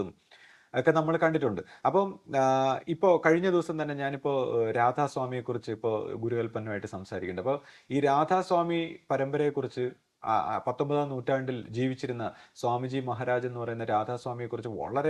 ഒക്കെ നമ്മൾ കണ്ടിട്ടുണ്ട്. അപ്പം ഇപ്പോൾ കഴിഞ്ഞ ദിവസം തന്നെ ഞാനിപ്പോൾ രാധാസ്വാമിയെ കുറിച്ച് ഇപ്പോൾ ഗുരുകൽപ്പനമായിട്ട് സംസാരിക്കുന്നുണ്ട്. അപ്പോൾ ഈ രാധാസ്വാമി പരമ്പരയെക്കുറിച്ച് 19-ാം നൂറ്റാണ്ടിൽ ജീവിച്ചിരുന്ന സ്വാമിജി മഹാരാജ് എന്ന് പറയുന്ന രാധാസ്വാമിയെ കുറിച്ച്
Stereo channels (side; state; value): both; identical; correlation 1.00